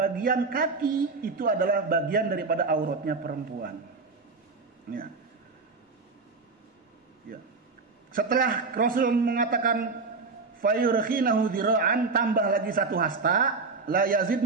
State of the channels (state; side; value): quieter; left; 4.2 dB